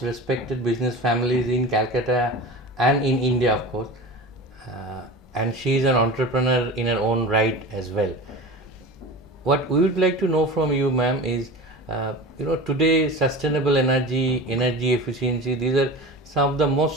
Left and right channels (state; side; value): normal; both; correlation 0.32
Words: respected business families in Calcutta and in India, of course. And she is an entrepreneur in her own right as well. What we would like to know from you, ma'am, is today sustainable energy efficiency, these are some of the